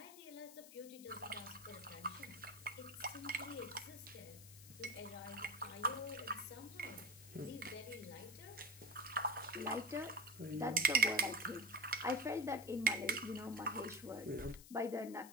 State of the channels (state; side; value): noise; left; hiss, 17 dB below the sound